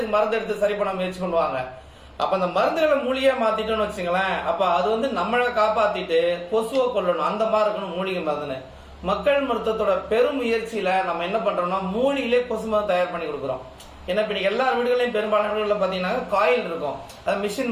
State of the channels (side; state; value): both; identical; correlation 1.00